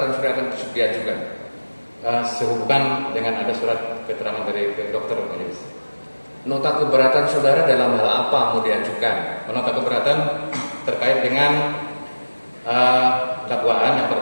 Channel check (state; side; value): inverted; both; correlation -1.00